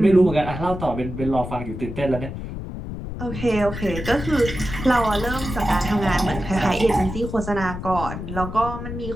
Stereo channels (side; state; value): left; noise; rumble, 7 dB below the sound